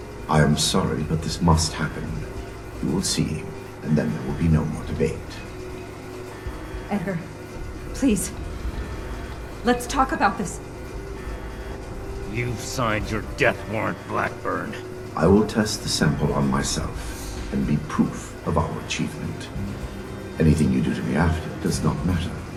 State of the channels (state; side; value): identical; both; correlation 1.00